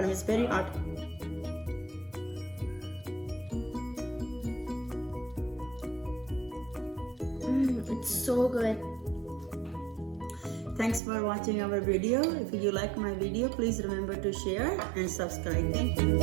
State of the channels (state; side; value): drops out; left; at 11.0 s